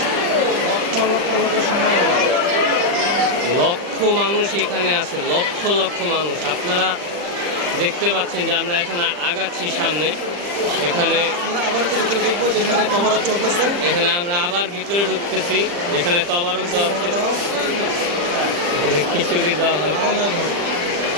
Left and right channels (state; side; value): late; left; 40 ms